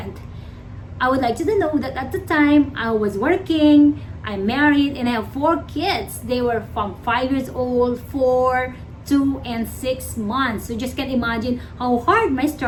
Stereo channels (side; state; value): both; identical; correlation 1.00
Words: I would like you to know that at the time, I was working, I'm married, and I have 4 kids. They were from 5 years old, 4, 2, and 6 months. So just can imagine how hard my